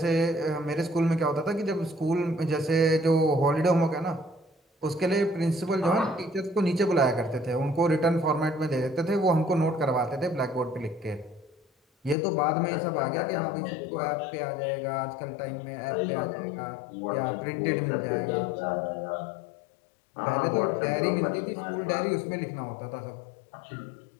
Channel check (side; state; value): right; drops out; at 12.2 s